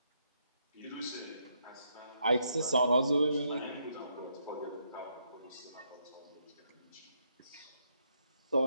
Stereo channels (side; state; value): both; inverted; correlation -0.76